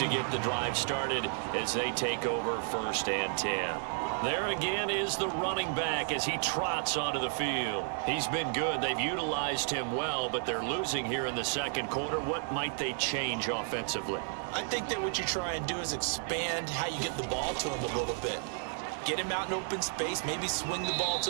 get the drive started as they take over 1st and 10. There again is the running back as he trots onto the field. He's been good. They've utilized him well, but they're losing here in the 2nd quarter. What might they change offensively? I think that what you try and do is expand how you get the ball to him a little bit. Get him out in open space, maybe swing the ball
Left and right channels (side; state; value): left; silent; 56 dB below the other